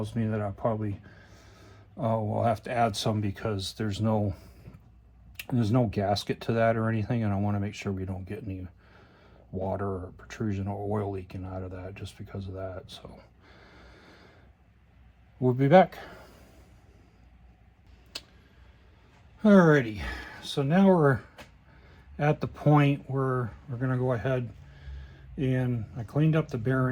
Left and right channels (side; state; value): both; identical; correlation 1.00